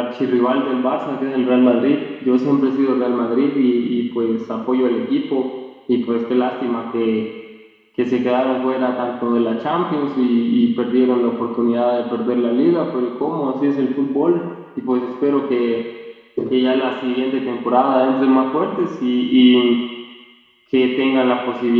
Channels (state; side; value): identical; both; correlation 1.00